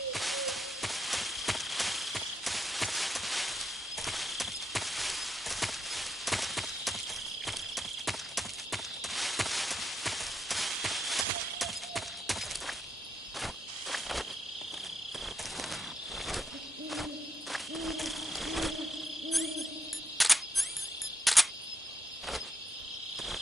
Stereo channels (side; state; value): both; normal; correlation 0.81